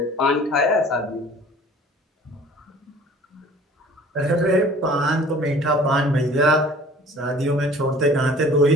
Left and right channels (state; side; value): normal; both; correlation 0.48